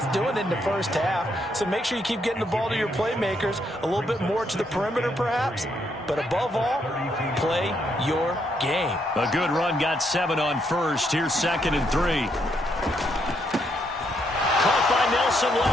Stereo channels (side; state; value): both; normal; correlation 0.75